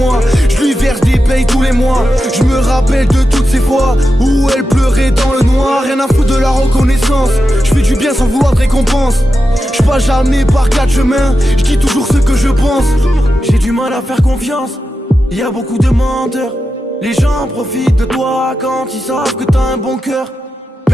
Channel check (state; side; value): normal; both; correlation 0.90